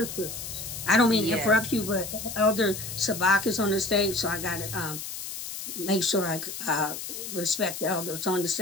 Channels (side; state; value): left; noise; hiss, 8 dB below the sound